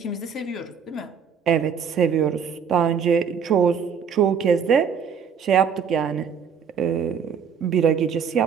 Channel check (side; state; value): left; quieter; 7.0 dB